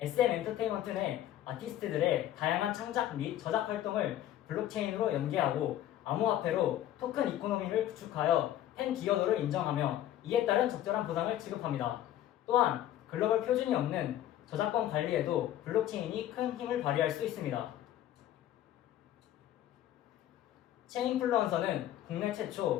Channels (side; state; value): right; quieter; 12.4 dB